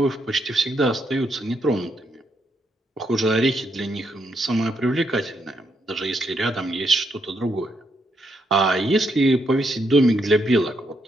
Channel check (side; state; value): both; normal; correlation 0.77